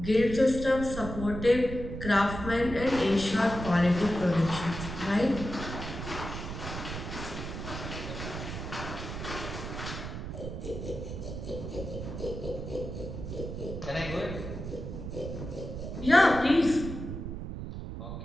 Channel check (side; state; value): right; noise; rumble, 7 dB below the sound